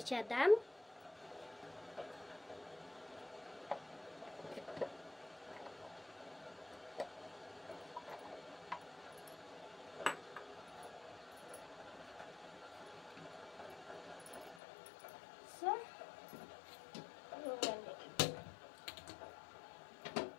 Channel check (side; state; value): right; drops out; at 14.6 s